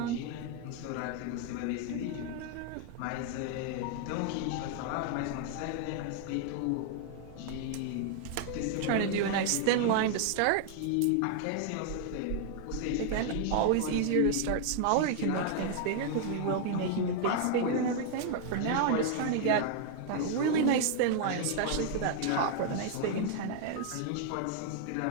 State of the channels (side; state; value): both; different; correlation 0.00